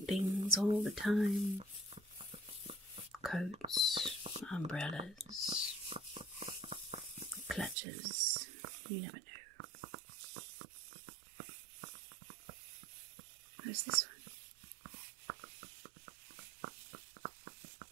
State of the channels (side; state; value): left; drops out; at 7.8 s